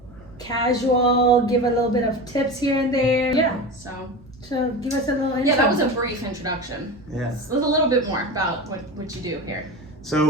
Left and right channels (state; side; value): normal; both; correlation 0.27